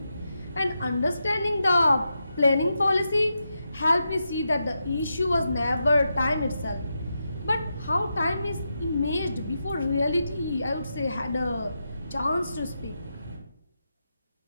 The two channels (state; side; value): inverted; both; correlation -0.87